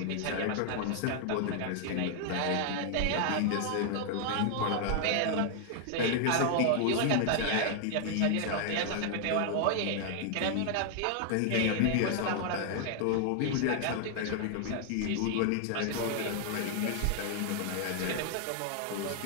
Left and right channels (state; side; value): different; both; correlation 0.00